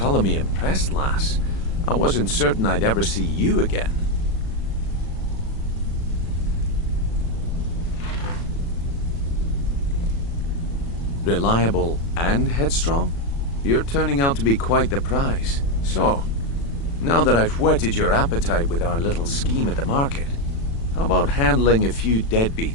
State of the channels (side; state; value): right; late; 36 ms